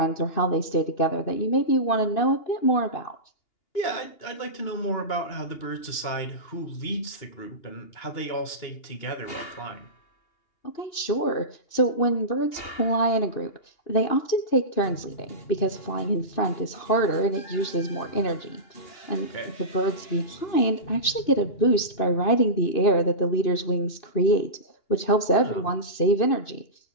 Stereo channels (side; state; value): right; late; 2.8 ms